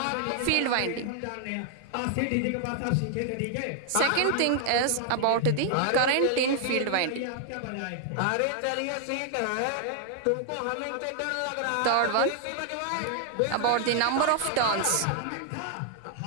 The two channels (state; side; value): different; both; correlation 0.00